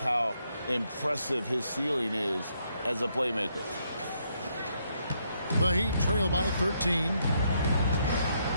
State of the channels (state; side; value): inverted; both; correlation -0.75